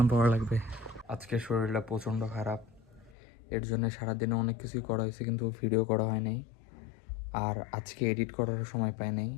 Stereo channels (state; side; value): drops out; right; at 3.2 s